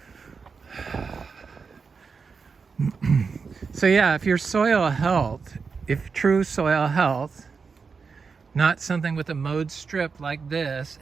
So yeah, if your soil health, if true soil health, not something with a mowed strip like this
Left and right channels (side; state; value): left; quieter; 5.2 dB